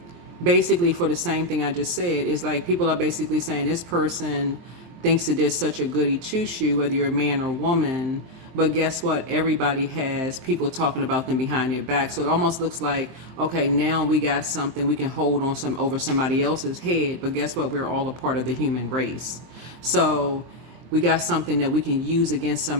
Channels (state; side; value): late; left; 23 ms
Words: basically for the same thing I just said. It's like people are basically saying this person thinks that they're such a goody two-shoe, whether you're a man or woman. But guess what? Everybody has people talking about them behind their back. So it almost looks like, okay, now we got something we can hold on over somebody else's head. But guess what? We're all a part of the human race. So we got something that we can use against